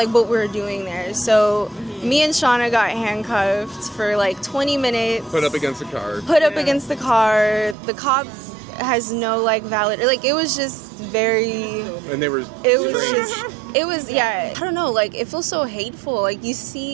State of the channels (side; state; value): left; drops out; at 7.8 s